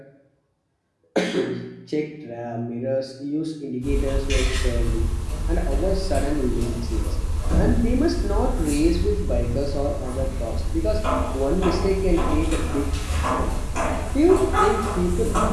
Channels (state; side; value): identical; both; correlation 1.00